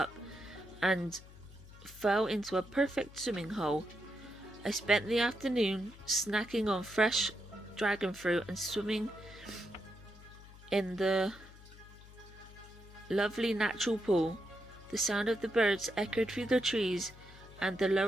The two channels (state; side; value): noise; left; hum, 19 dB below the sound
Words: and fell into a perfect swimming hole. I spent the afternoon snacking on fresh dragon fruit and swimming in the lovely natural pool. The sound of the birds echoed through the trees, and the